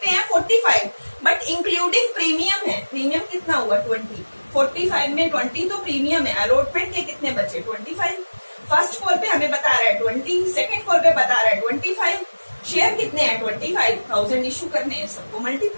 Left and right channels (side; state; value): both; inverted; correlation -1.00